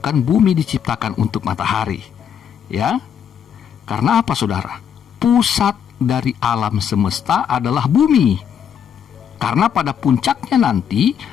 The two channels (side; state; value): right; quieter; 8.3 dB